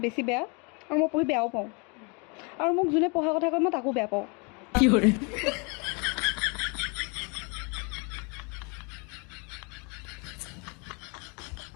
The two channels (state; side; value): quieter; right; 32.6 dB